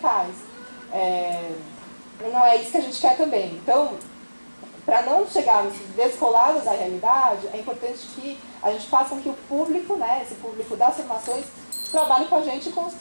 Não é isso que a gente quer também. Então, para não chegarmos descolados da realidade, é importante que a gente faça com que o público, né, esse público das formações, trabalhe com a gente e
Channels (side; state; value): both; inverted; correlation -1.00